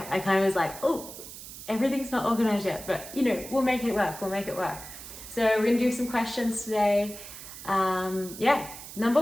of was like, oh, everything's not organized yet, but you know, we'll make it work, So we're gonna do some questions today. Number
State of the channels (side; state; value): right; noise; hiss, 13 dB below the sound